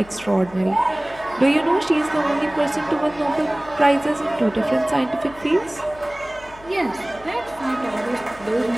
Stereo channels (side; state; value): left; noise; hum, 21 dB below the sound